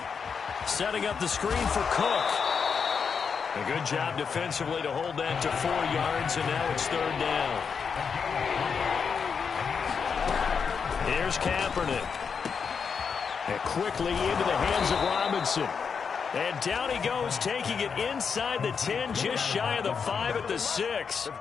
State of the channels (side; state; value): right; quieter; 6.1 dB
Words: Setting up the screen for Cook. A good job defensively to hold that to 4 yards, and now it's 3rd down. Here's Kaepernick. And quickly into the hands of Robinson. And down he goes, taking it inside the 10, just shy of the 5 at the 6.